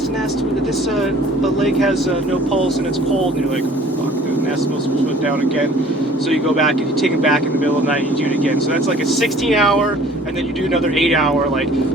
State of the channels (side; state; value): both; normal; correlation 0.52